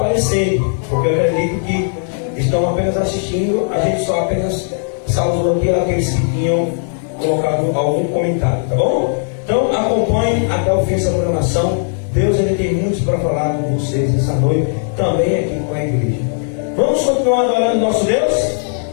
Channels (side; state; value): right; silent; digital silence